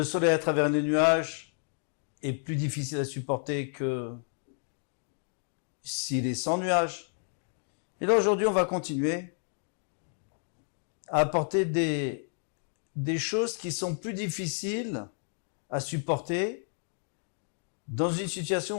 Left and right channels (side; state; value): right; silent; 57 dB below the other